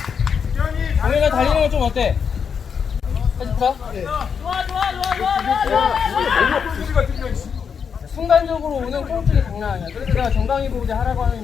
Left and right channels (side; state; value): right; quieter; 6.7 dB